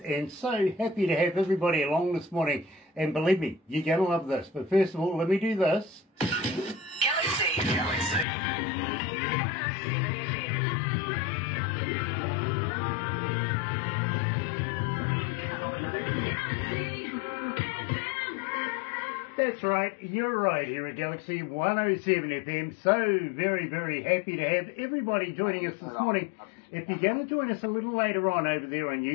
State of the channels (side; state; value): right; drops out; at 8.2 s